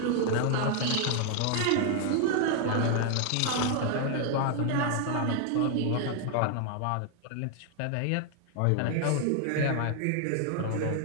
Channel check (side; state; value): both; different; correlation 0.00